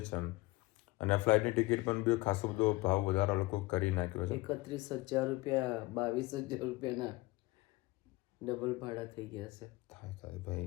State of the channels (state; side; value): quieter; right; 21.3 dB